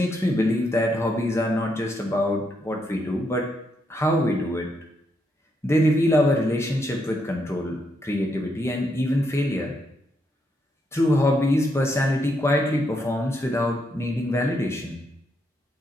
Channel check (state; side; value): normal; both; correlation 0.78